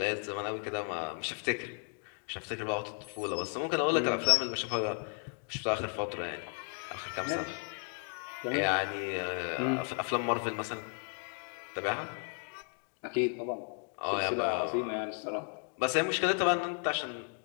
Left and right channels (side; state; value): right; quieter; 37.2 dB